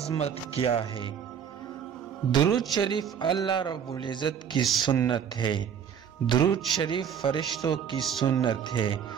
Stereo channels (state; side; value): quieter; left; 8.1 dB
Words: کیا ہے؟ درود شریف اللہ رب العزت کی سنت ہے۔ درود شریف فرشتوں کی سنت ہے۔